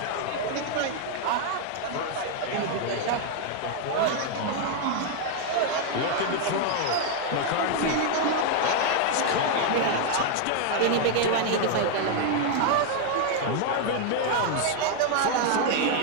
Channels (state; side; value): different; both; correlation 0.00